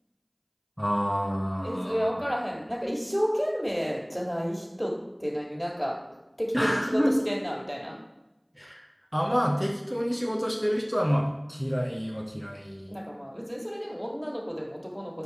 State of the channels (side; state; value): both; identical; correlation 1.00